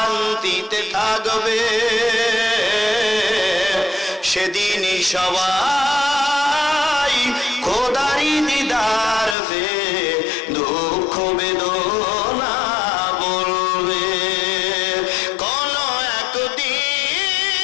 থাকবে, সেদিনই সবাই খোদারি দিদার পে দুঃখ বেদনা বলবে। কোন একদিন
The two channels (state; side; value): drops out; right; at 9.3 s